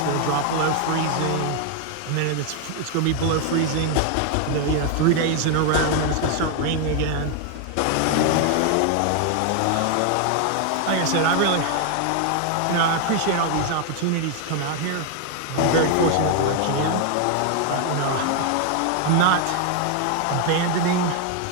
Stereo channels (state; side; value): different; both; correlation 0.00